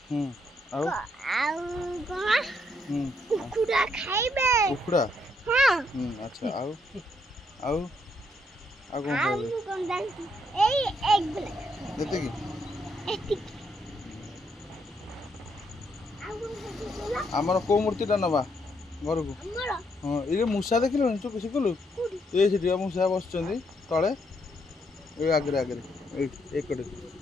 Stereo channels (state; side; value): normal; both; correlation 0.74